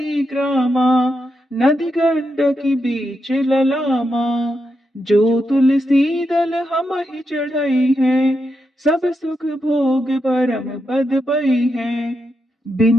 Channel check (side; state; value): both; normal; correlation 0.84